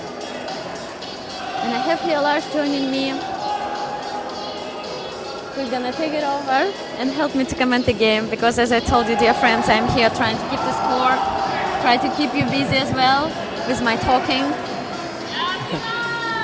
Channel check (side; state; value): both; identical; correlation 1.00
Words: And I have here Lars joining me. We're gonna take it over and help me to comment the game, because as I told you, dear friends, I'm here trying to keep the score, try to keep you busy as well with my talking.